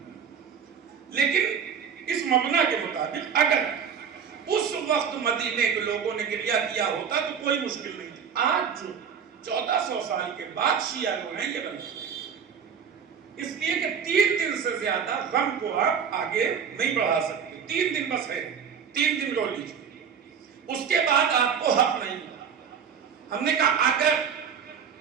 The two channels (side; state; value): left; quieter; 7.2 dB